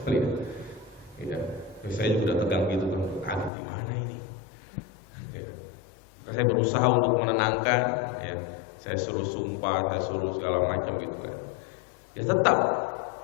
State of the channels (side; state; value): right; drops out; at 3.5 s